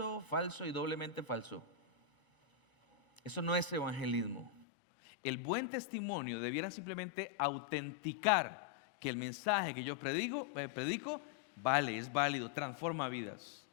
falso y doblemente falso. Eso no es evangelismo. El buen testimonio debiera simplemente autenticar que el mensaje que yo predico vale, es válido, transforma vidas.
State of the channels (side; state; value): right; drops out; at 4.7 s